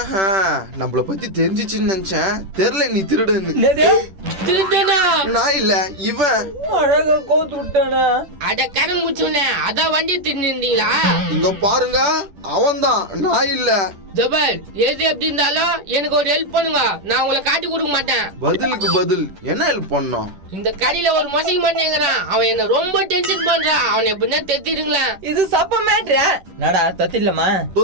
நம்மள பத்தி தெரிஞ்சிச்சுன்னு நினைச்சேன். தெரியல நீ திருடுன்னு. திருடனா? நான் இல்ல இவன். அழகா கோத்து விட்டானே. அட கடன் முச்சுனே அதான் வண்டி திருந்தீங்களா? இங்க பாருங்க அவன் தான், நான் இல்ல. ஜபர் எது எப்படி இருந்தாலும் எனக்கு ஒரு ஹெல்ப் பண்ணுங்க. நான் உங்களை காட்டி கொடுக்க மாட்டேன். பதிலுக்கு பதில் என்ன ஹெல்ப் பண்ணோம்? இந்த கடையில ஒரு மொசைக்கு மாட்டேங்கிறான். அவன் என்ன ரொம்ப டென்ஷன் பண்றான். அவனை எப்படின்னா தெத்திடுங்களா? இது சப்ப மேட்ரா. நடா தத்திடலாமா?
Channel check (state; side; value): late; left; 10 ms